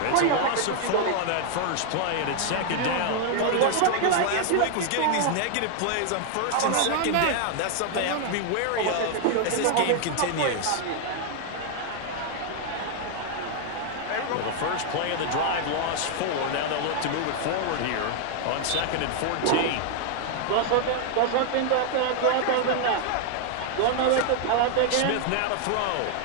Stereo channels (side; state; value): both; different; correlation 0.00